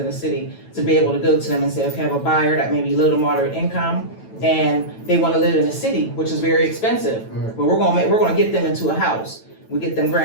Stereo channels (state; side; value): late; right; 9.0 ms